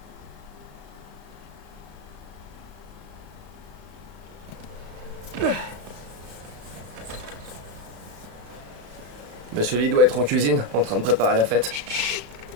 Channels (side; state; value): left; late; 35 ms